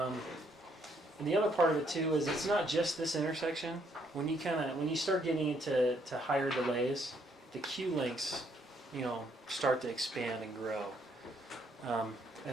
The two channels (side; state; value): both; normal; correlation 0.70